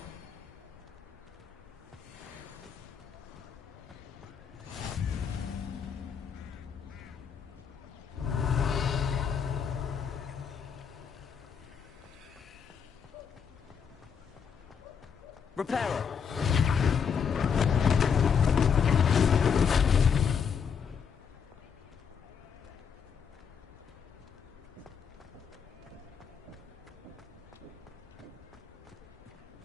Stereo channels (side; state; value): right; quieter; 6.9 dB